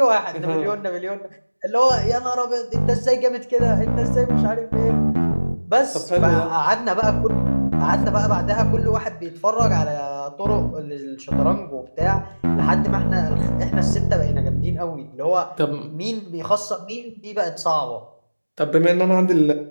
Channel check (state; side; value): inverted; both; correlation -1.00